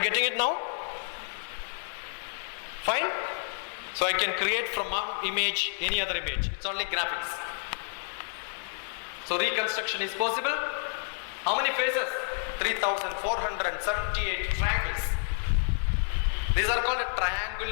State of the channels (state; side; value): silent; right; digital silence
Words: getting it now? Fine? So I can create from one image any other image. It's only graphics. So reconstruction is possible. How many faces? 3,478 triangles. These are called a